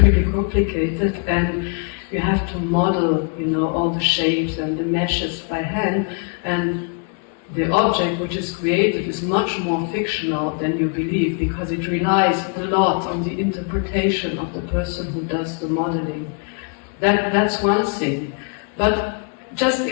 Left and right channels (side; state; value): right; quieter; 38.0 dB